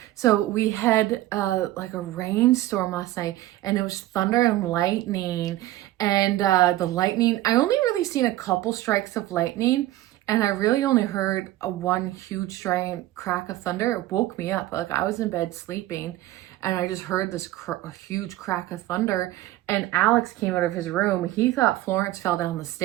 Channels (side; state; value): left; quieter; 15.6 dB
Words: So we had like a rainstorm last night, and it was thunder and lightning. And the lightning, I only really seen a couple strikes of lightning, and I really only heard one huge giant crack of thunder. It woke me up. Like I was in bed sleeping, and I just heard this huge crack of thunder. And Alex came out of his room. He thought Florence fell down the